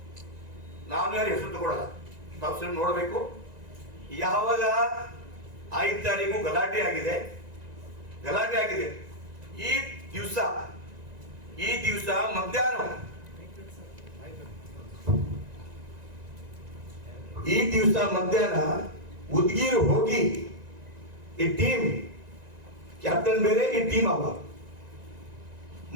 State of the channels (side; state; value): left; late; 1.9 ms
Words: ನಾನು ಯಾರು ಹೆಸರು ತಗೊಳ್ಳಲ್ಲ, ತಾವು ನೋಡಬೇಕು. ಯಾವಾಗ 5 ತಾರೀಕು ಗಲಾಟೆ ಆಗಿದೆ, ಈ ದಿವಸ ಮಧ್ಯಾಹ್ನ ಉದ್ಗೀರ್ ಹೋಗಿ ಈ ಟೀಮ್ ಕ್ಯಾಪ್ಟನ್ ಬೇರೆ, ಈ ಟೀಮ್ ಅವ